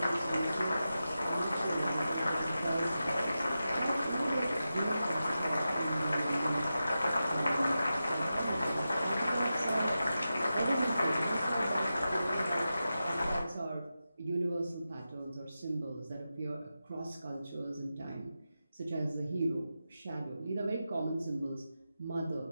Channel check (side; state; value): both; inverted; correlation -0.91